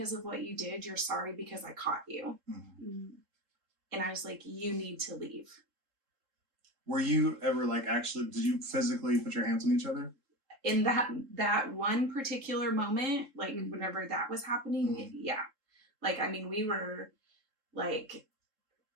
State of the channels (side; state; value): left; late; 3.7 ms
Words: of what you did. You're sorry because I caught you. And I was like, you need to leave. Were you ever like actually, did you physically put your hands on each other? In that one particular moment, like whenever that was happening, like, I mean, we were like